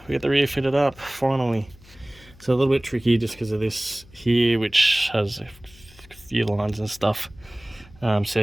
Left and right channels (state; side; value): noise; left; hum, 24 dB below the sound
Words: we get the rear fitted up finally. So a little bit tricky just because of this here, which has a few lines and stuff.